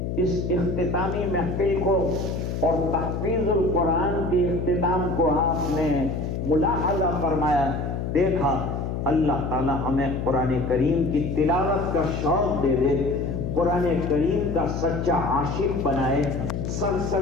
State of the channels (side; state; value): left; noise; hum, 3 dB below the sound